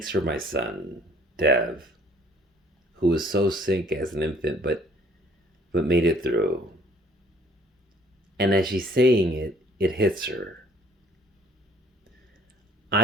for my son, Dev, who was so sick as an infant but made it through. And as she's saying it, it hits her.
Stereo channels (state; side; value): normal; both; correlation 0.58